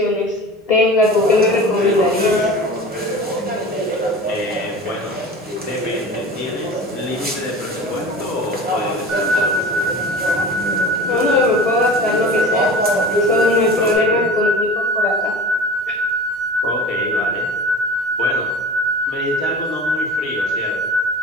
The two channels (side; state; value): both; normal; correlation 0.36